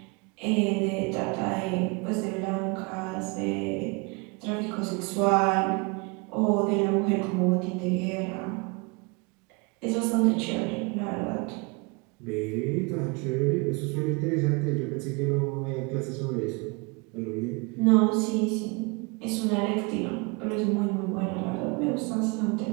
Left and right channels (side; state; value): left; quieter; 29.4 dB